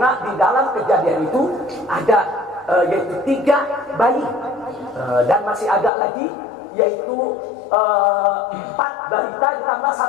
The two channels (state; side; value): drops out; right; at 5.9 s